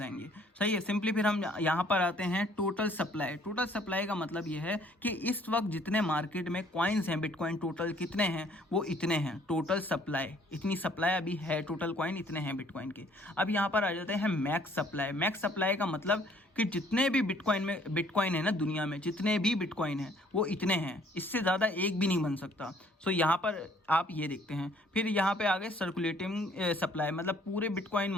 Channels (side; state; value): both; normal; correlation 0.60